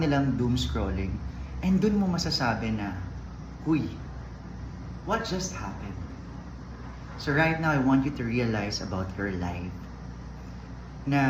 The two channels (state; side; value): identical; both; correlation 1.00